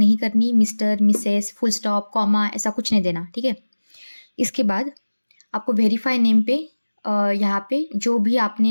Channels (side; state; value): both; inverted; correlation -1.00